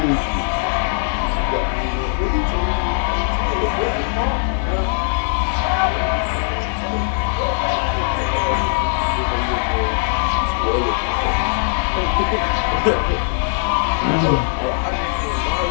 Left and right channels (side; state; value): right; silent; 61 dB below the other